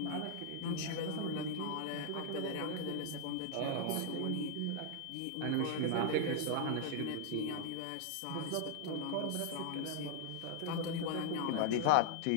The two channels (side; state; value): both; different; correlation 0.00